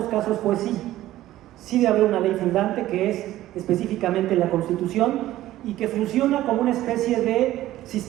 casos fue sí. Sí debe haber una ley fundante, que es específicamente la Constitución, y que funciona como una especie de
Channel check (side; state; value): left; quieter; 14.7 dB